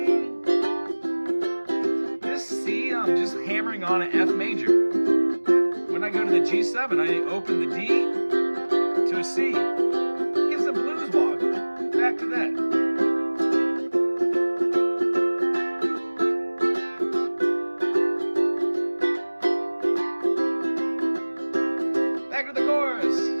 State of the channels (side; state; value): both; inverted; correlation -1.00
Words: This C, I'm just hammering on an F major. When I go to the G7, I open the D to a C. Gives a blues walk. Back to that. Back to the chorus.